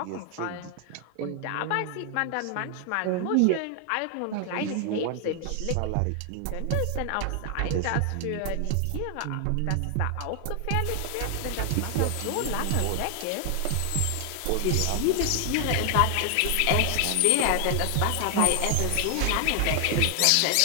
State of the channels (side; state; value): both; different; correlation 0.00